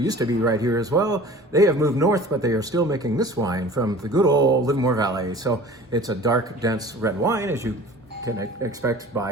to be right here as well. They have moved north, but they are still making this wine from the good old Livermore Valley. So it's a dark, dense red wine, as you can expect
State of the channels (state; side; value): normal; both; correlation 0.44